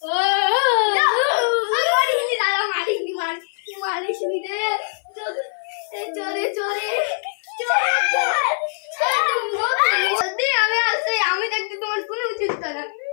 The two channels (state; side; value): silent; right; 55 dB below the other